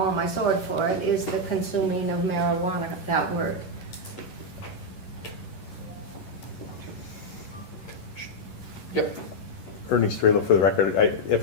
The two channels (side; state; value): right; late; 11 ms